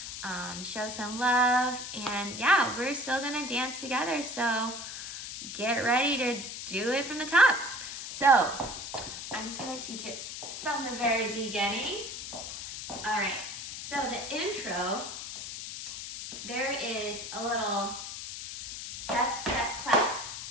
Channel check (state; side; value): noise; left; hiss, 8 dB below the sound